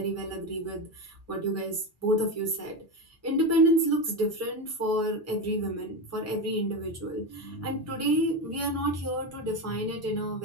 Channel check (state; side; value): normal; both; correlation 0.17